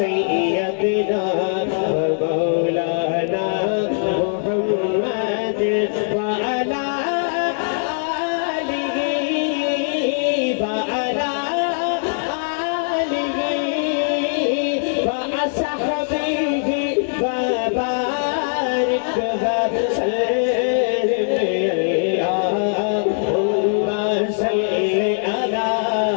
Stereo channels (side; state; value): right; silent; digital silence